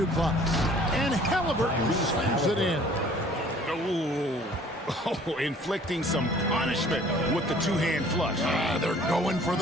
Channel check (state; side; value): normal; both; correlation 0.53